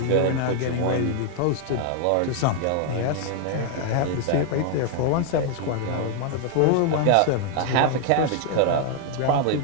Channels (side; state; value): both; different; correlation 0.00